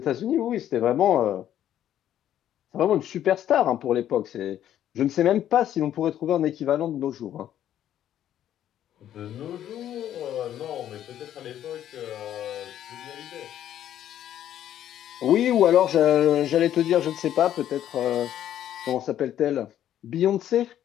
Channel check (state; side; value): quieter; right; 11.2 dB